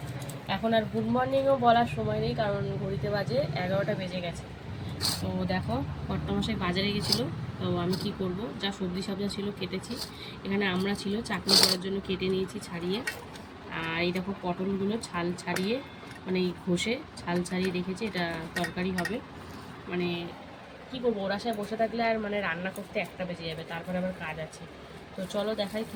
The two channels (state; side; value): identical; both; correlation 1.00